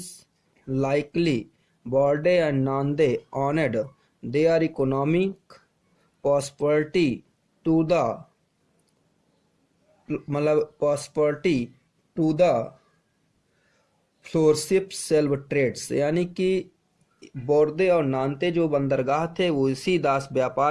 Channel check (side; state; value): both; identical; correlation 1.00